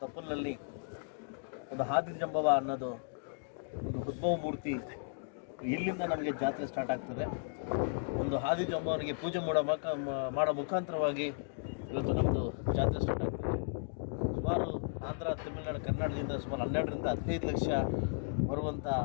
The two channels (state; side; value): silent; right; digital silence